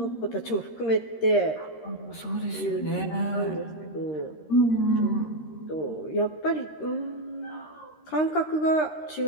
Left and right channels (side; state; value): right; late; 13 ms